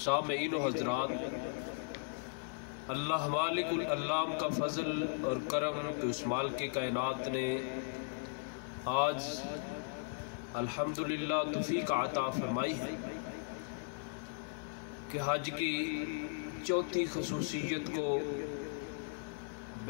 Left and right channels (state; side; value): silent; right; 53 dB below the other